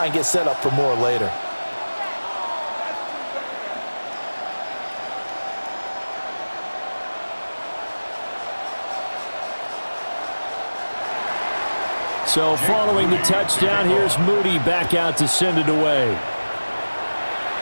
and get set up for more later. So following the touchdown, here's Moody back out to send it away.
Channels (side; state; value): both; inverted; correlation -1.00